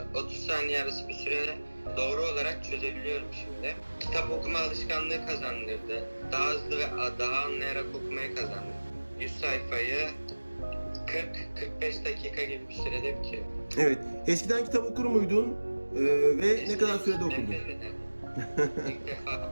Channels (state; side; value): inverted; both; correlation -1.00